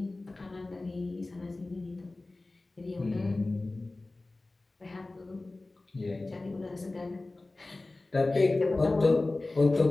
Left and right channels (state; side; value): quieter; right; 3.1 dB